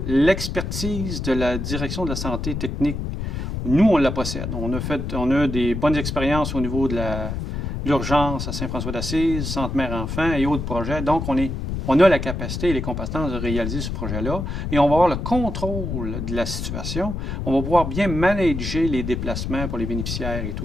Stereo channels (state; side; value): noise; left; rumble, 4 dB below the sound